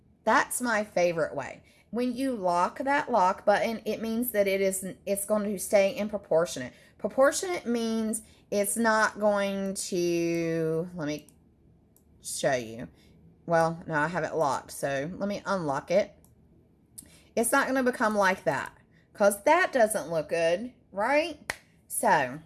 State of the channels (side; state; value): both; identical; correlation 1.00